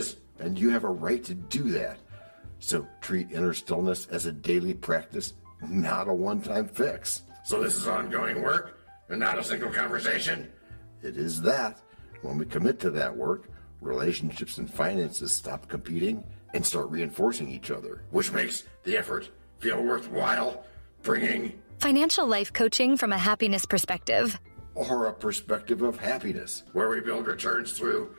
and you have a right to do that. So treat inner stillness as a daily practice, not a one-time fix. So this is ongoing work and not a single conversation? It is that. When we commit to that work, relationships and finances stop competing and start reinforcing each other, which makes the effort feel worthwhile, bringing Financial life coaching from a happiness perspective. or a perspective of happiness, where we build returns through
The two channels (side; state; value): both; inverted; correlation -1.00